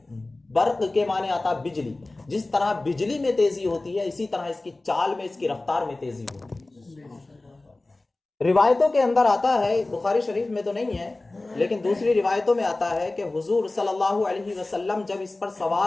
برق کے معنی آتا بجلی. جس طرح بجلی میں تیزی ہوتی ہے اسی طرح اس کی چال میں، اس کی رفتار میں تیزی ہوتی ہے. روایتوں کے اندر آتا ہے، بخاری شریف میں تو نہیں ہے لیکن دوسری روایتوں میں آتا ہے کہ حضور صلی اللہ علیہ وسلم جب اس پر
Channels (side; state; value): right; quieter; 3.0 dB